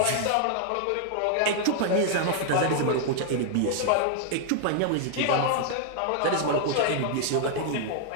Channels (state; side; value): different; both; correlation 0.00